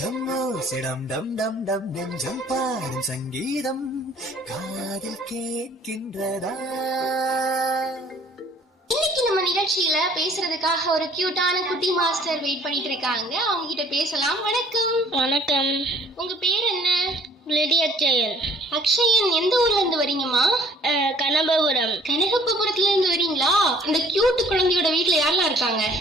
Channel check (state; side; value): normal; both; correlation 0.55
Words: பாடும் சங்கீதம் காதில் கேட்கின்றதா? இன்னைக்கு நம்ம நிகழ்ச்சியில பேசுறதுக்காக ஒரு கியூட்டான குட்டி மாஸ்டர் வெயிட் பண்ணிட்டு இருக்காங்க. அவங்க கிட்ட பேசலாம். வணக்கம். வணக்கம். உங்க பேர் என்ன? அக்ஷயன். அக்ஷயன், எந்த ஊர்ல இருந்து வரீங்கம்மா? கனகபுரம். கனகபுரத்துல இருந்து வரீங்களா? இந்த கியூட் குழந்தையோட வீட்டுல யாரெல்லாம் இருக்காங்க?